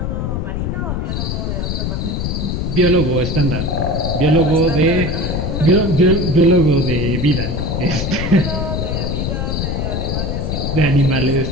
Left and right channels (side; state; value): left; noise; rumble, 1 dB below the sound